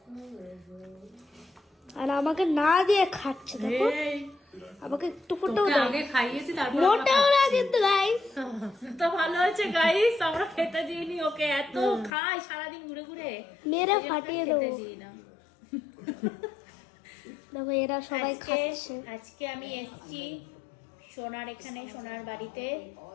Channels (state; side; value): drops out; right; at 12.1 s